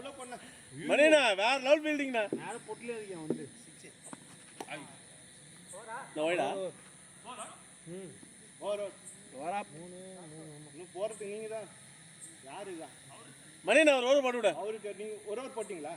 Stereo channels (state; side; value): identical; both; correlation 1.00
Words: பண்ண மணினா வேற லெவல் ஃபீல்டிங்னா நேரா பொட்ல இருக்கேன் வந்து நோய்டா ஓவர் வரா இன்னும் போறது நீங்க தான் யாரு தான் மணினா ஒரு ஓவர் போட்டு விடு. அவருக்கு நீங்க ஒரு ஓவர் போட்டீங்களா?